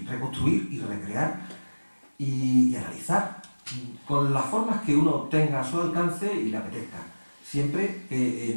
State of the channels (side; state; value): both; inverted; correlation -1.00